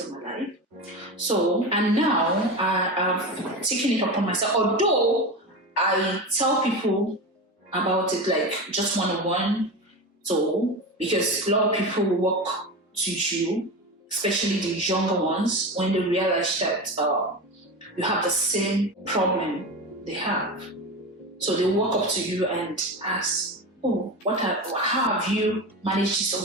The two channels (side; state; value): both; normal; correlation 0.24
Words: of my life. So, and now I have taken it upon myself, although I tell people about it like just one-on-one. So, because a lot of people will walk to you, especially the younger ones, when they realize that you have the same problem they have. So they walk up to you and ask, oh, how have you managed this